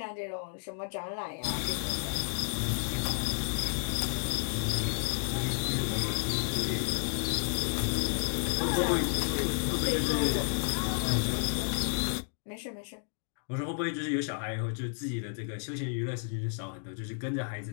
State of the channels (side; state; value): right; silent; digital silence